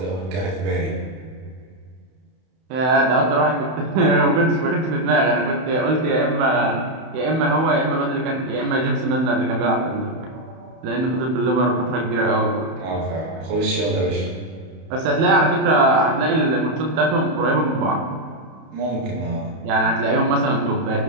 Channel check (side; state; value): left; late; 31 ms